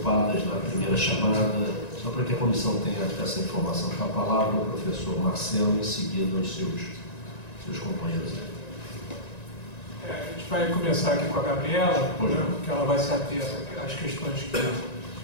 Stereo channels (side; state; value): right; late; 1.9 ms